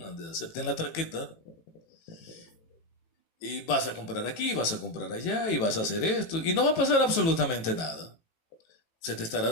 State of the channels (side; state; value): right; late; 18 ms